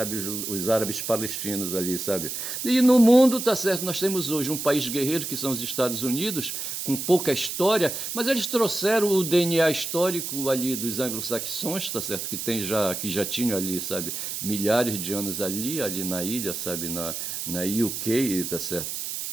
os árabes palestinos ali, sabe? E no mundo, tá certo, nós temos hoje um país guerreiro, que são os Estados Unidos, com pouca história, mas eles trouxeram o DNA histórico ali dos anglo-saxões, tá certo, que já tinham ali, sabe, milhares de anos ali na ilha, sabe, na UK, tá certo?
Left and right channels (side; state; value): right; noise; hiss, 5 dB below the sound